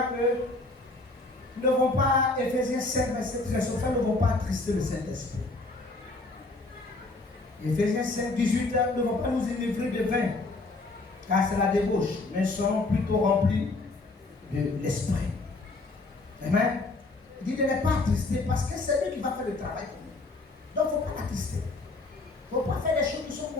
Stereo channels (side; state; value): right; quieter; 3.2 dB